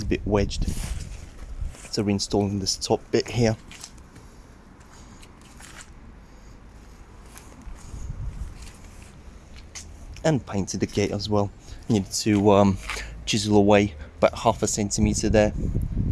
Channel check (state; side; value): identical; both; correlation 1.00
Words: a bit wedged. So reinstalling this top bit here. And painted the gate as well. Needed to chisel away about 1/2 centimetre there,